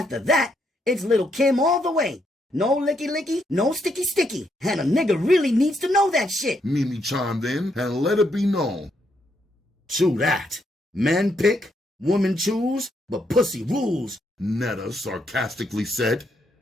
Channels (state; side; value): normal; both; correlation 0.76